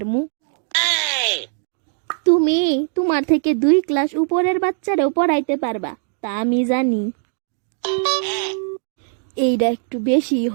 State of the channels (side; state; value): left; silent; 62 dB below the other